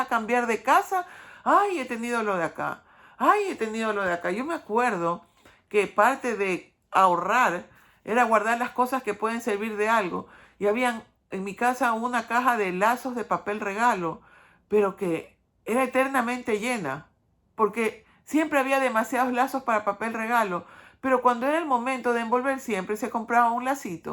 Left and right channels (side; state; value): both; identical; correlation 1.00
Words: cambiar de casa. Ay, he tenido lo de acá. Ay, he tenido lo de acá. Yo me acuerdo que parte de ahorrar era guardar las cosas que pueden servir de algo. Y habían en mi casa una caja de lazos de papel regalo, pero que era eternamente llena, porque siempre había demasiados lazos para papel regalo, pero cuando era el momento de envolver siempre se compraba un